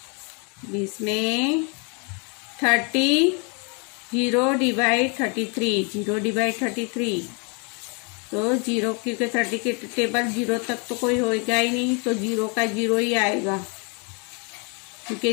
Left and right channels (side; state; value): right; quieter; 34.5 dB